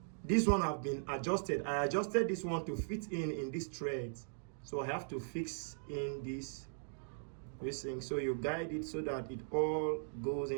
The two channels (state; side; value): silent; left; digital silence